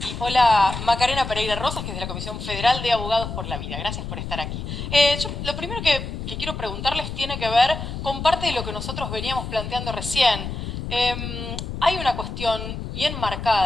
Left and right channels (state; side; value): noise; left; rumble, 6 dB below the sound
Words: hola, Macarena Pereira Rosas, que es de la Comisión Federal de Abogados por la Vida. Gracias por estar aquí. Yo lo primero que quiero preguntarles tiene que ver con parte de lo que nosotros veníamos planteando recién. Hay una cuestión bien